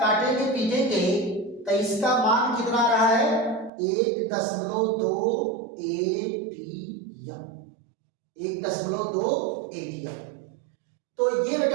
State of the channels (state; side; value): drops out; left; at 3.7 s